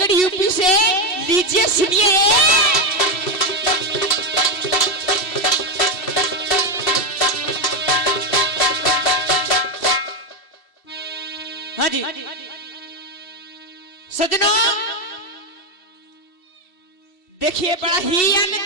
यूपी से लीजिए सुनिए। हाँ जी सजनों देखिए बड़ा ही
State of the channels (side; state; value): right; late; 2.7 ms